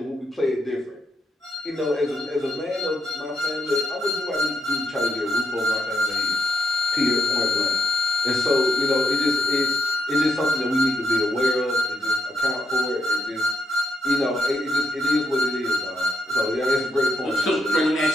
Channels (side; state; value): both; normal; correlation 0.80